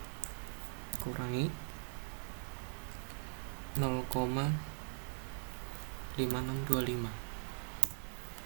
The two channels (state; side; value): silent; left; 50 dB below the other